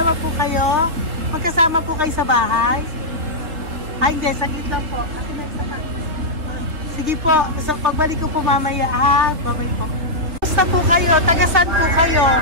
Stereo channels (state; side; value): late; left; 3.0 ms